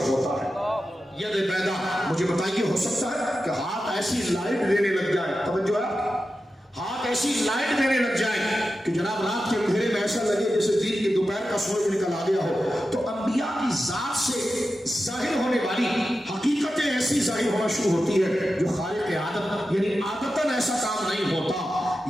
ہوتا ہے۔ ید بیدا، مجھے بتائیے ہو سکتا ہے کہ ہاتھ ایسی لائٹ دینے لگ جائے، توجہ ہے، ہاتھ ایسی لائٹ دینے لگ جائے کہ جناب رات کے اندھیرے میں ایسا لگے جیسے دن کی دوپہر کا سورج نکل آ گیا ہو؟ تو انبیاء کی ذات سے ظاہر ہونے والی حقیقتیں ایسی ظاہر ہونا شروع ہوتی ہے جو خالق عادت یعنی عادتاً ایسا کام نہیں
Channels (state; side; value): normal; both; correlation 0.92